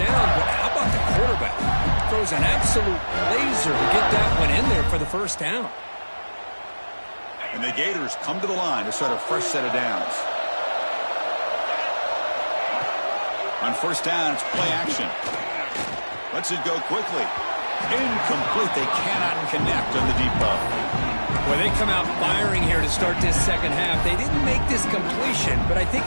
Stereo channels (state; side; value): inverted; both; correlation -1.00